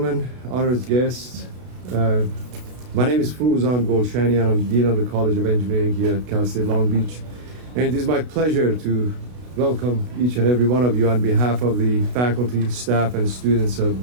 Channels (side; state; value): left; late; 32 ms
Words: honored guests. My name is Fuzan Golshani, and I'm Dean of the College of Engineering here at Cal State Long Beach. And it is my pleasure to welcome each and every one of you on behalf of the faculty, staff, and students of